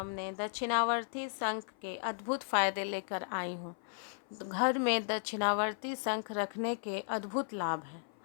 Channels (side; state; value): right; silent; 54 dB below the other